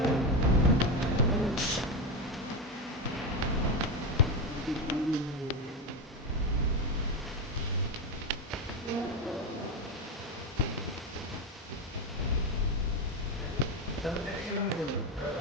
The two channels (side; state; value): both; normal; correlation 0.14